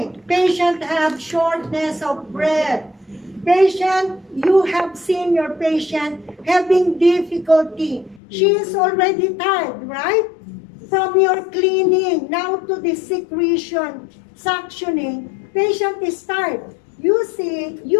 Patient have shortness of breath. Patient, you have seen your patient having difficulty. She is already tired, right? From your cleaning, now to the secretion, suctioning, patient is tired. You see,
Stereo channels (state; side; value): drops out; right; at 8.2 s